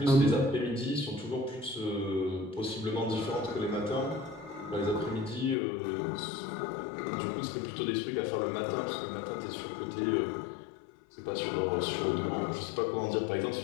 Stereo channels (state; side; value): drops out; right; at 5.6 s